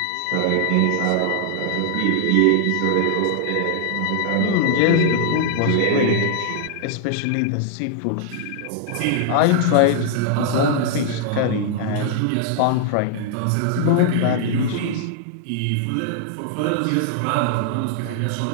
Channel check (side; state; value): both; different; correlation 0.00